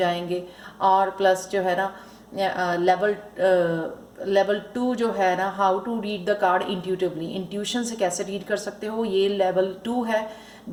और प्लस जो है ना लेवल 2 जो है ना, how to read the card intuitively, intuition से कैसे रीड कर सकते हो, ये लेवल 2 है।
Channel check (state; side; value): identical; both; correlation 1.00